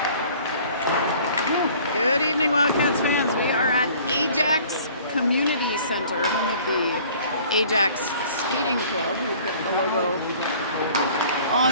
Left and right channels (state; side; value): inverted; both; correlation -0.51